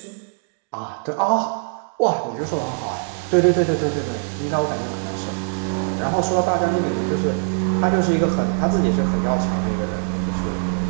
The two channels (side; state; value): left; silent; 64 dB below the other